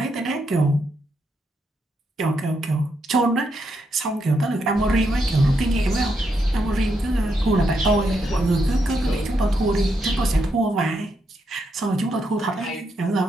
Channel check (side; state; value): both; normal; correlation 0.80